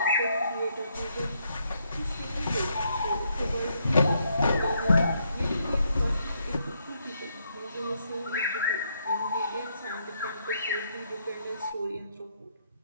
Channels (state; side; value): inverted; both; correlation -0.75